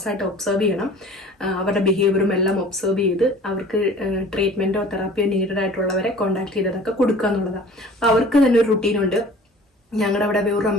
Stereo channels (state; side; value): normal; both; correlation 0.46